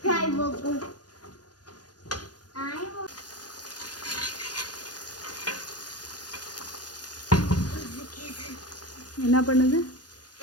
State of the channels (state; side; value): late; right; 0.69 ms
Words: நாய் மோக்கம் என்ன பண்ணுது?